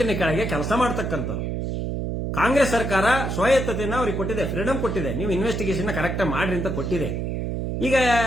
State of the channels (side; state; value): right; noise; hum, 2 dB below the sound